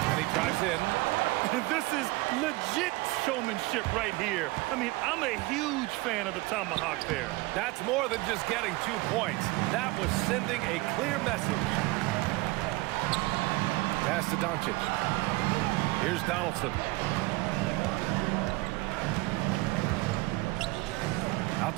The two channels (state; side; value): quieter; left; 22.0 dB